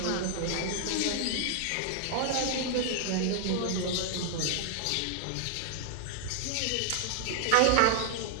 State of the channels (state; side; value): different; both; correlation 0.00